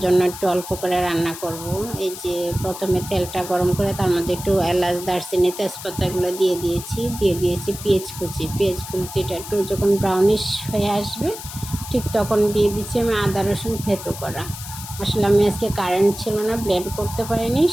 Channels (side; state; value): left; noise; hiss, 11 dB below the sound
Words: জন্য একটু অল্প করে রান্না করব। এই যে প্রথমে তেলটা গরম করে তার মধ্যে একটু এলাচ, দারচিনি, তেজপাতাগুলো দিয়ে দিয়েছি পেঁয়াজ কুচিটা একটু যখন ব্রাউনিশ হয়ে আসবে ঠিক তখন দিয়ে দিচ্ছি আমি আদা রসুন থেতো করা। আসলে আমি আজকে কারেন্ট ছিল না, ব্লেন্ড করতে পারিনি,